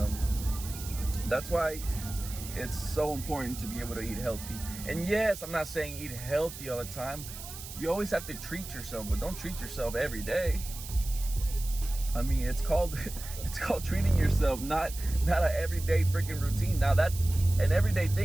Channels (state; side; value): noise; right; hiss, 12 dB below the sound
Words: That's why it's so important to be able to eat healthy. And yes, I'm not saying eat healthy all the time. You always have to treat yourself, but don't treat yourself every day. I mean, it's called treating yourself, not an everyday freaking routine. Now, that an everyday